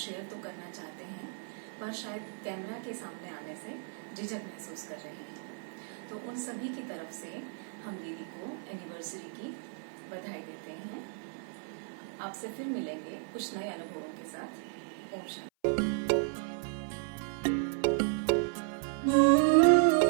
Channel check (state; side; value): silent; left; 55 dB below the other